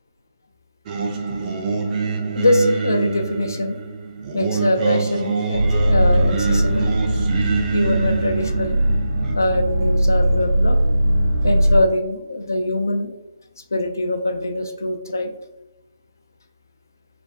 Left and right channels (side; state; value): both; inverted; correlation -0.88